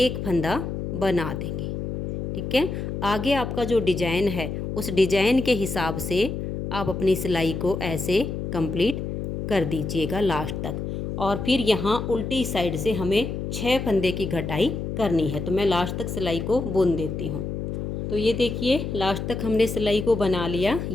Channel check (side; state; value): left; noise; hum, 4 dB below the sound